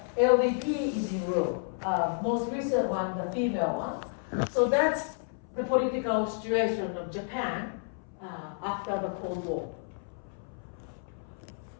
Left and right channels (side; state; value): right; silent; 57 dB below the other